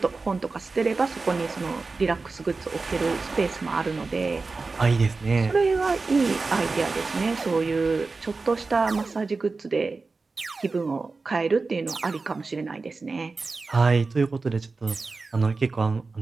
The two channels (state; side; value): quieter; left; 4.0 dB